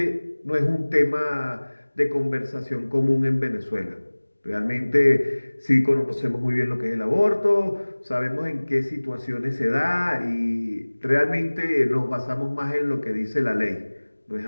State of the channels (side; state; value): both; inverted; correlation -1.00